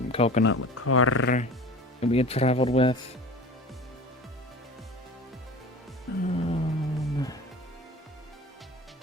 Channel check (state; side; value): normal; both; correlation 0.38